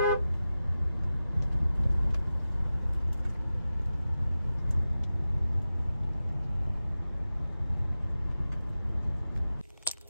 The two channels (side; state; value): both; inverted; correlation -0.94